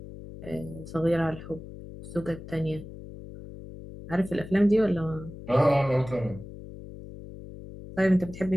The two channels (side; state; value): left; noise; hum, 13 dB below the sound